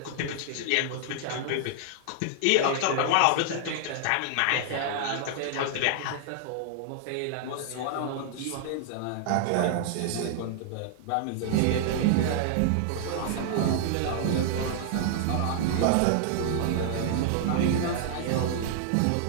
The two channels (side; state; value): both; different; correlation -0.01